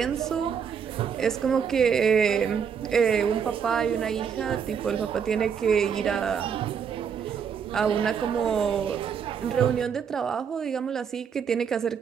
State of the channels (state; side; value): quieter; left; 7.1 dB